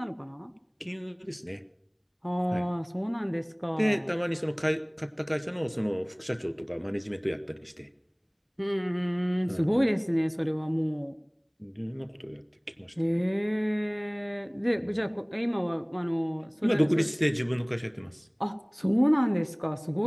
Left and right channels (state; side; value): identical; both; correlation 1.00